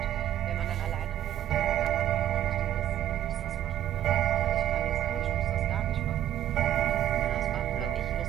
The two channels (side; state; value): left; quieter; 11.9 dB